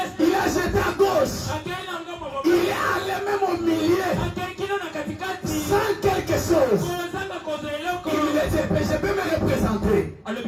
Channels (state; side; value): identical; both; correlation 1.00